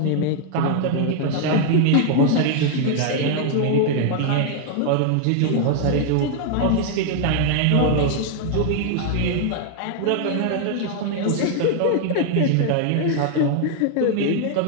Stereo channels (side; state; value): both; different; correlation 0.00